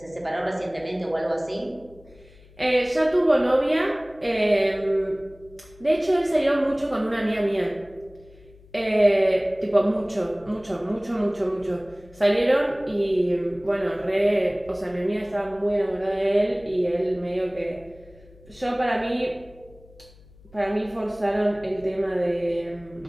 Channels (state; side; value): noise; left; hum, 25 dB below the sound